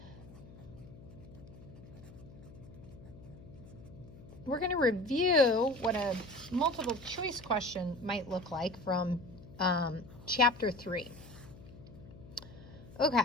We're going to review what a multiple choice question might look like from Chapter 3.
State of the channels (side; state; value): left; noise; hum, 18 dB below the sound